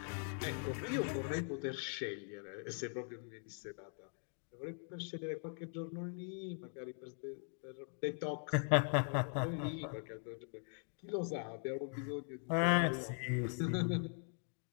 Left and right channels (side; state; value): right; silent; 50 dB below the other